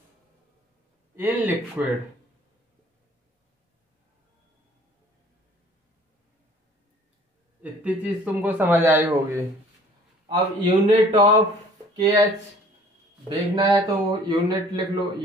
in liquid. इतनी चीज तुमको समझ आई होगी। अब यूनिट ऑफ KH देखना है तो यूनिट लिख लो,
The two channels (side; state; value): both; normal; correlation 0.53